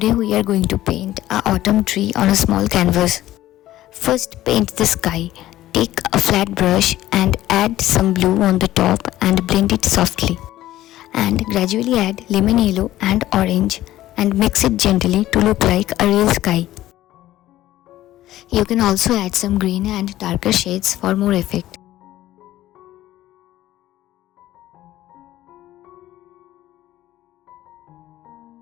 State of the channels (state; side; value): quieter; right; 14.6 dB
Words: we are going to paint a autumn tree on a small canvas. First paint the sky. Take a flat brush and add some blue on the top and blend it softly. And gradually add lemon yellow and orange and mix it gently to look like a real sky. You can also add some green and darker shades for more effect.